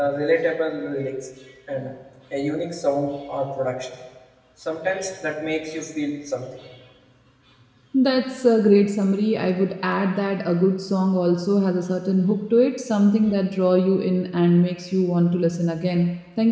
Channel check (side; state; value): both; identical; correlation 1.00